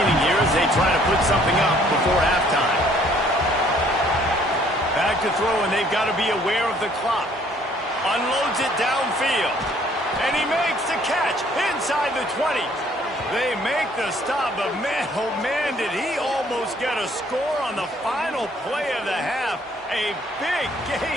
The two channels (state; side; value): normal; both; correlation 0.61